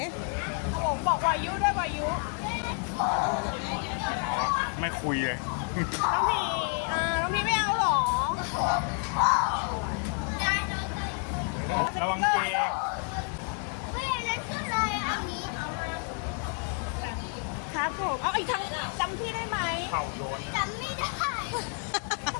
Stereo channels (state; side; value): quieter; right; 39.1 dB